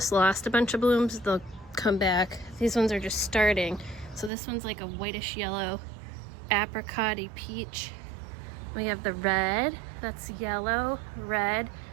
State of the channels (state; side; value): drops out; left; at 4.3 s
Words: lost a bunch of blooms. They'll come back. These ones are just starting. So this one's like a whitish yellow apricot-y peach. We have the red, that's yellow, red,